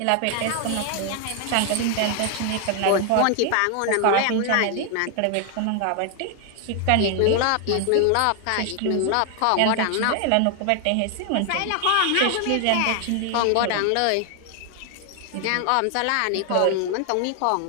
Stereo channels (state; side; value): different; both; correlation 0.00